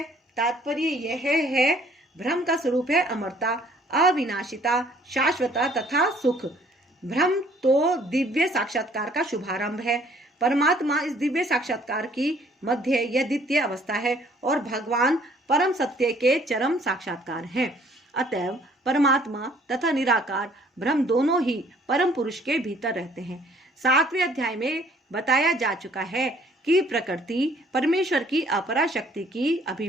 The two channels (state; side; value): normal; both; correlation 0.59